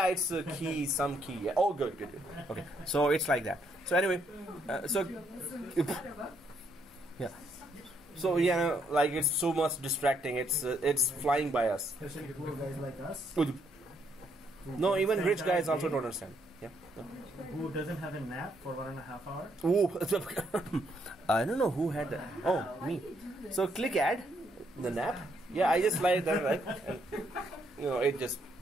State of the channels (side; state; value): both; normal; correlation 0.73